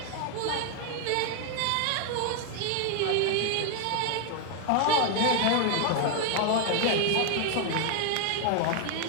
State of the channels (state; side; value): different; both; correlation 0.01